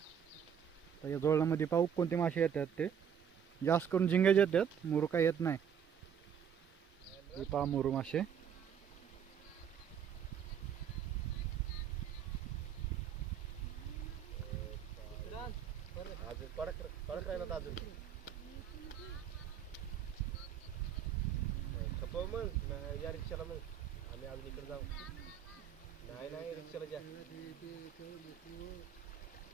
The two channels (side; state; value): left; quieter; 8.3 dB